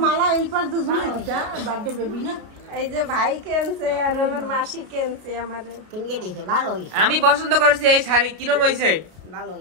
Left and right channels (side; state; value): left; late; 33 ms